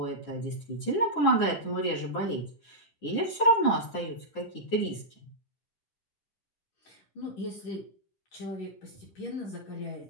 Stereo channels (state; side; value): late; right; 9.8 ms